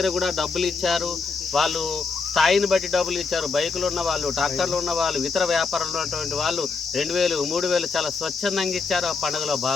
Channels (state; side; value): quieter; right; 4.7 dB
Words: కూడా డబ్బులు ఇచ్చారు. వాళ్ళు స్థాయిని బట్టి డబ్బులు ఇచ్చారు. బైకులు ఉన్న వాళ్ళు, ట్రాక్టర్లు ఉన్న వాళ్ళు, ఇతర వ్యాపారంలో ఉన్నటువంటి వాళ్ళు 2000, 3000 చాలా స్వచ్ఛందంగా ఇచ్చారు. ఆ పండుగలో